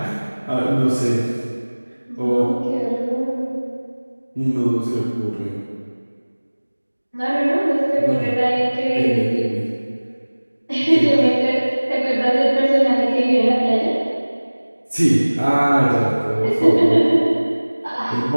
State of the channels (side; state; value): both; inverted; correlation -1.00